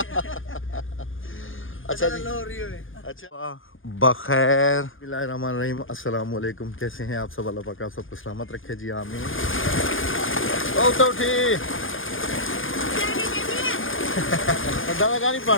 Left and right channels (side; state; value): right; late; 0.58 ms